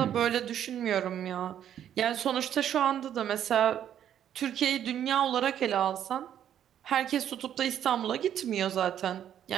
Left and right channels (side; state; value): left; quieter; 10.1 dB